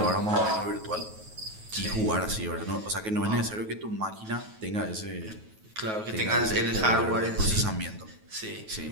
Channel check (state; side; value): late; left; 9.3 ms